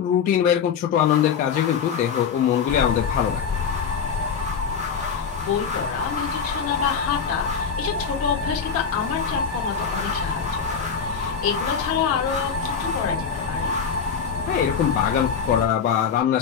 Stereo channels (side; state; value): right; quieter; 6.7 dB